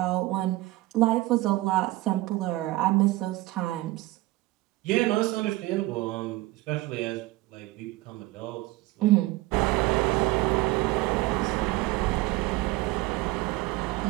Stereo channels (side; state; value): left; quieter; 18.8 dB